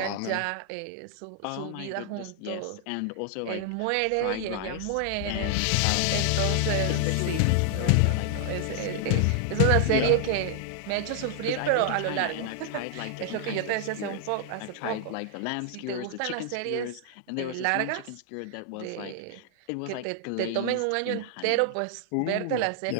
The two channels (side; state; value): both; different; correlation 0.00